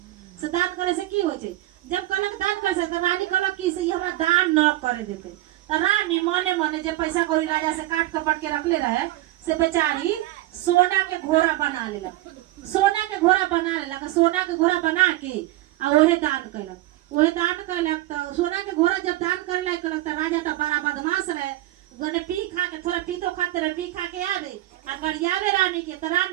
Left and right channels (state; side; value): quieter; left; 16.4 dB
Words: से दान करे से की होइ छै। जब कहलक दान करे से तो रानी कहलक कि से हमरा दान न करे देते। तो रानी मने जे पैसा कौड़ी राजा से काट कपट के रखले रहे से बेचारी सोना के घोड़ा बना लेलक, सोना के घोड़ा बना के आ ओहे दान कैलक। तो सोना के घोड़ा जब दान करे लायक कैलक तो राजा तो बड़ा बदमाश रहे, गने पी खा के थोड़ा पीतो खाते रहे, पी खा के आवे आ गरियावे रानी के। तो